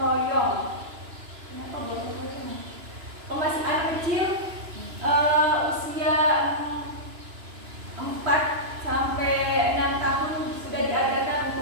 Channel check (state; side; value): late; left; 2.9 ms